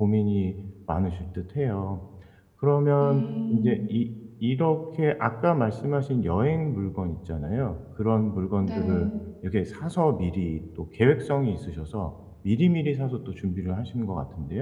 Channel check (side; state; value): both; identical; correlation 1.00